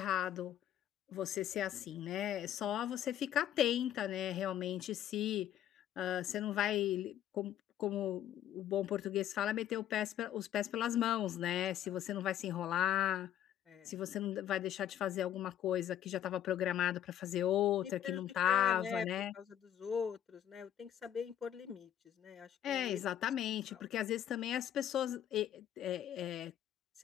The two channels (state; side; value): quieter; right; 10.9 dB